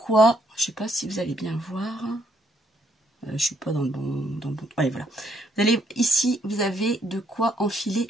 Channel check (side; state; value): both; normal; correlation 0.71